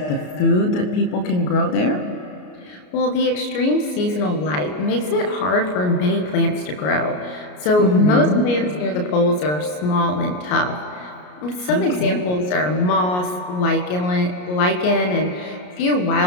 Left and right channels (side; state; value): right; late; 33 ms